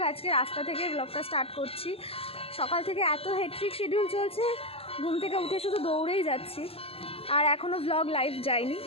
আজকে রাস্তা থেকে ব্লগটা স্টার্ট করছি। সকাল থেকে এত হেক্টিক শিডিউল চলছে, ঘুম থেকে উঠে শুধু দৌড়েই যাচ্ছি। আর এখনও ব্লগ লাইভ যায়নি।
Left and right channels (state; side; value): late; right; 0.28 ms